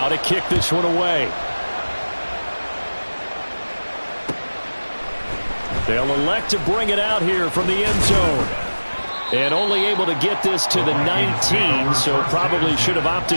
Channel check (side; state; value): both; inverted; correlation -1.00